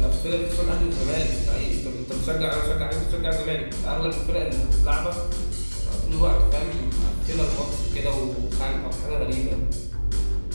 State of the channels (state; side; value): inverted; both; correlation -1.00